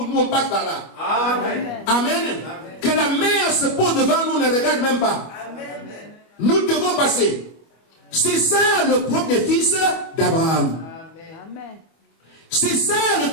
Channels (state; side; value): late; right; 25 ms